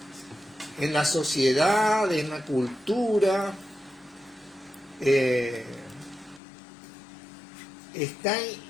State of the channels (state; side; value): drops out; right; at 6.4 s